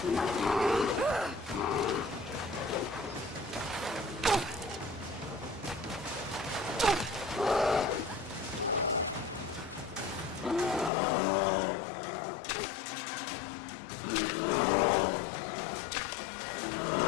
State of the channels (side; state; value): right; drops out; at 10.9 s